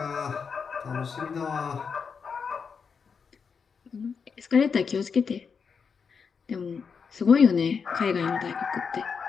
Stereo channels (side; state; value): right; quieter; 5.9 dB